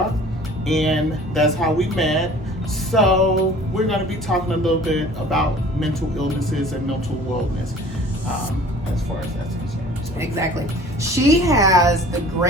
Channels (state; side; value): normal; both; correlation 0.47